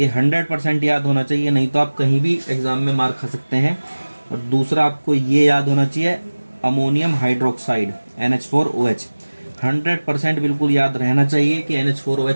100% याद होना चाहिए, नहीं तो आप कहीं भी एग्जाम में मार खा सकते हैं। और दूसरा आपको ये याद होना चाहिए, अमोनियम हाइड्रोक्साइड NH4OH, 100% बिल्कुल याद रहना चाहिए कि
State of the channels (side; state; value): both; inverted; correlation -1.00